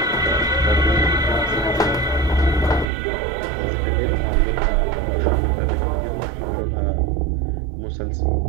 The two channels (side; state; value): left; drops out; at 2.9 s